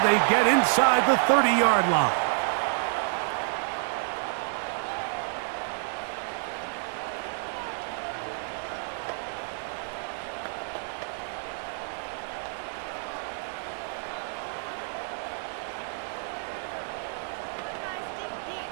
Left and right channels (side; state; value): left; silent; 59 dB below the other